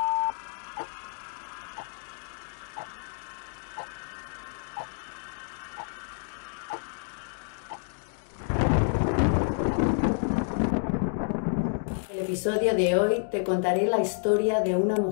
En el episodio de hoy te contaré la historia de una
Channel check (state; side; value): silent; right; digital silence